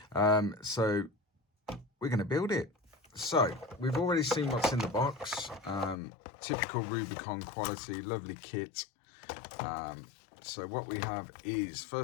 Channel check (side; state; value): right; drops out; at 6.0 s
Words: So we're going to build it. So we've already seen what's in the box. Typical Rubicon quality, lovely kit. So what we have is,